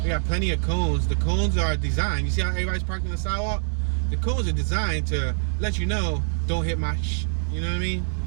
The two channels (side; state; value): left; silent; digital silence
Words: We got plenty of cones. The cones are designed. You see how everybody's parked on the sidewalk? The cones are designed to let you know, don't hit my you know what I mean?